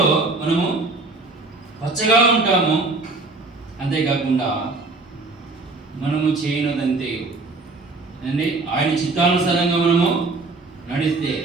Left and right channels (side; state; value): left; quieter; 3.5 dB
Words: మనము పచ్చగా ఉంటాము. అంతేకాకుండా మనము చేయనదంతే ఆయన చిత్తానుసారంగా మనము